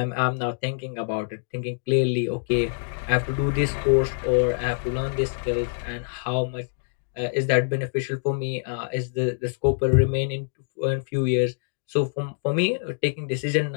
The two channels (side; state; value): right; silent; digital silence